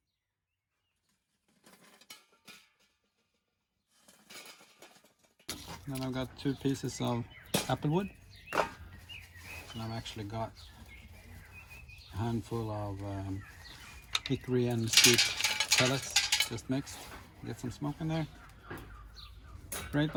Then I've got 2 pieces of applewood. And I've actually got a handful of hickory and mesquite pellets just mixed. Get some smoke in there. Grate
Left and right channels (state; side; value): identical; both; correlation 1.00